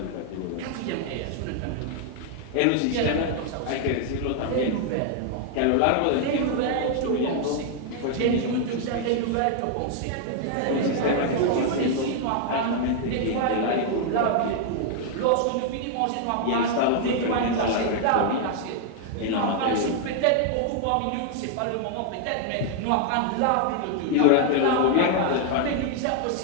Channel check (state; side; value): different; both; correlation 0.00